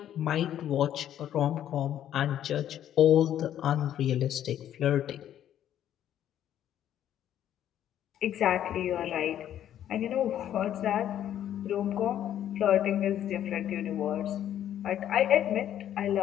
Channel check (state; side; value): quieter; right; 10.9 dB